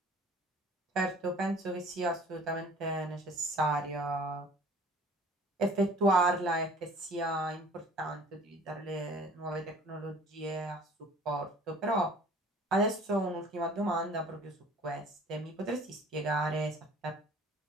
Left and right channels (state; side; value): normal; both; correlation 0.50